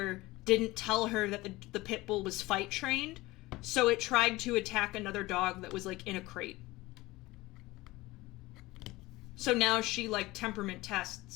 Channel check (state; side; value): quieter; right; 19.9 dB